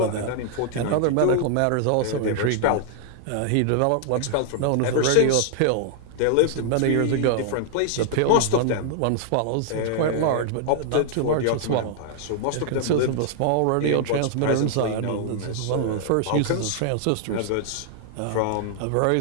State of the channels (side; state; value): both; different; correlation 0.00